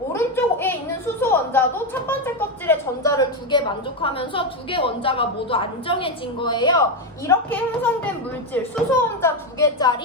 있는 수소 원자도 첫 번째 껍질에 전자를 2개 만족하면서 2개 원자가 모두 안정해진 거예요. 이렇게 형성된 물질, 수소 원자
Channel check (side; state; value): both; normal; correlation 0.09